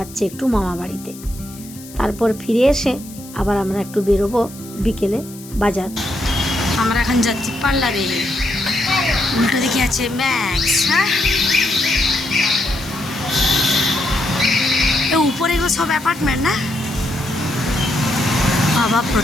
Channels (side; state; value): left; noise; hiss, 18 dB below the sound